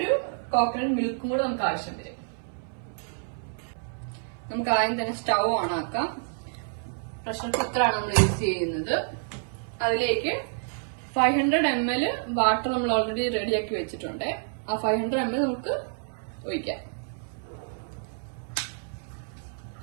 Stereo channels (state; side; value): silent; left; 57 dB below the other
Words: കോക്കനട്ട് മിൽക്കും കൂടെ നമുക്ക് ആവശ്യം വരും. നമുക്ക് ആദ്യം തന്നെ സ്റ്റൗ ഓൺ ആക്കാം. പ്രഷർ കുക്കറാണ് നമ്മൾ യൂസ് ചെയ്യുന്നത്. അതിലേക്ക് 500 ml വാട്ടർ നമ്മൾ ഓൾറെഡി റെഡിയാക്കി വെച്ചിട്ടുണ്ട്. ആ 500 ml നമുക്ക് ഒഴിക്കാം.